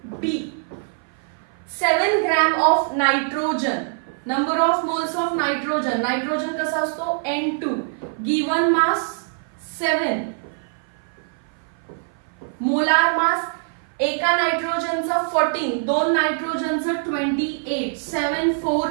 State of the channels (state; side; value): silent; left; 56 dB below the other